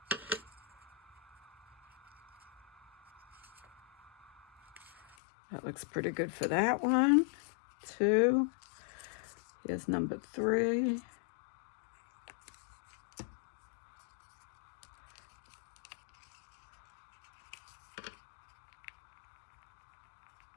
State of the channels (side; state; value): right; drops out; at 5.2 s